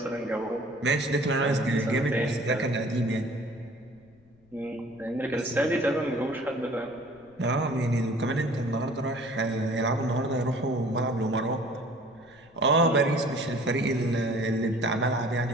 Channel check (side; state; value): left; noise; rumble, 29 dB below the sound